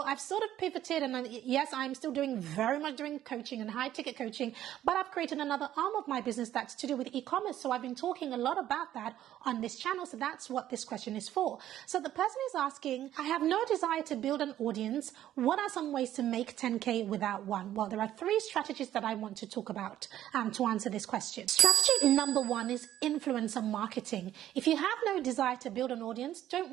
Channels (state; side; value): quieter; left; 12.2 dB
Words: I've sort of pivoted, and yes, I'm still very much doing coaching and high ticket coaching, but I've created another arm of my business that's to do with e-commerce. So I've been talking a lot about that on this channel. So that's what this question is for. So the person is asking, I have no desire to build an audience. What are some ways to make 10K without one? Well, there are 3 strategies that I want to talk about to answer this question. Strategy number 1 is influencer marketing. If you have no desire to build an audience, don't